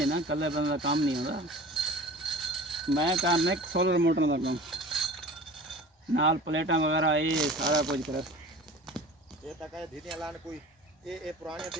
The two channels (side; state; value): both; normal; correlation 0.40